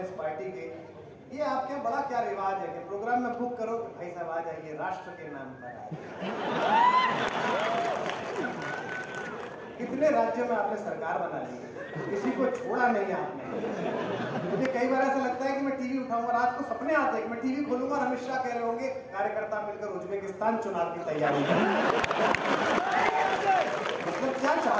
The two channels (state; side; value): identical; both; correlation 1.00